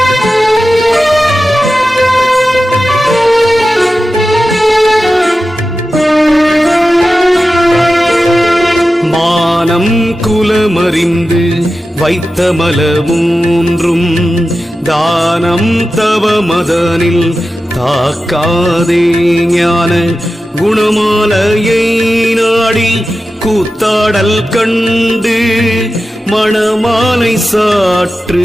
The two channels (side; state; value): both; normal; correlation 0.93